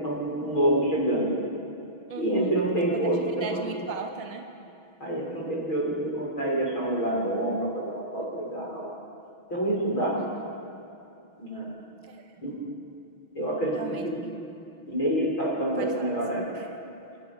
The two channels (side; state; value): right; late; 6.3 ms